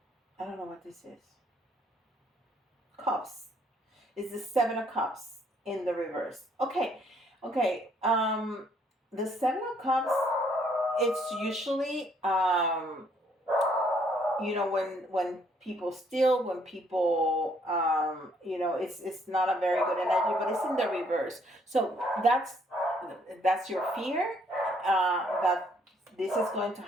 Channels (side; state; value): both; normal; correlation 0.66